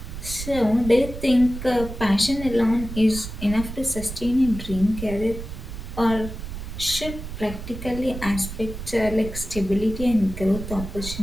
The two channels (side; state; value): right; noise; rumble, 9 dB below the sound